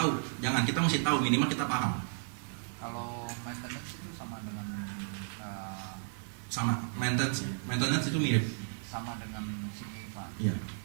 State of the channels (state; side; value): silent; left; digital silence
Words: Jangan, kita mesti tahu, minimal kita paham. Kalau maintenance itu sama dengan Sama maintenance itu mirip. sama dengan sinking fund. Iya.